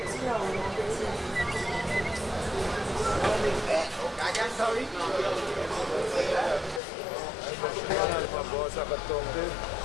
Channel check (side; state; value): right; drops out; at 6.8 s